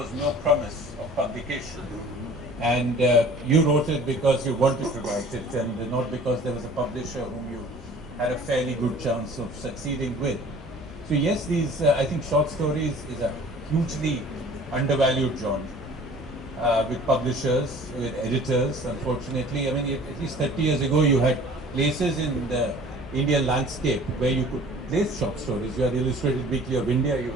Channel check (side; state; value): both; normal; correlation 0.48